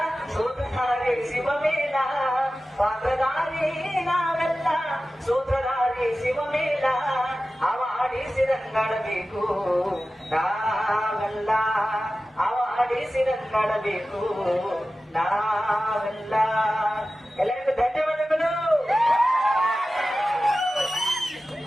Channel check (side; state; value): both; normal; correlation 0.95